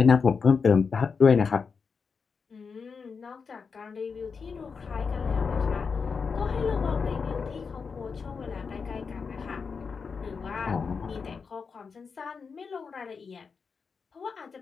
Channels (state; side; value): quieter; right; 5.4 dB